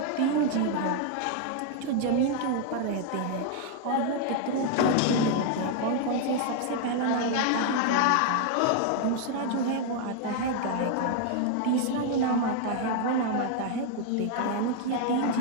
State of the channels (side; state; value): both; different; correlation 0.00